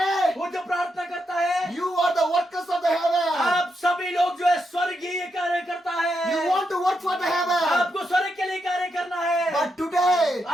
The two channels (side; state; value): both; normal; correlation 0.83